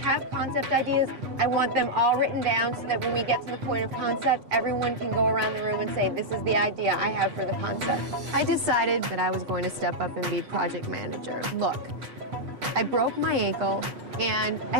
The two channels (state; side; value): late; left; 8.0 ms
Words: concept ideas, I want them all written down so that when we get to the point of concept, everyone can go around the room and say, this is the idea I have for the concept. I decided that I was going to step up and be project manager. Look, I broke my ankle, and I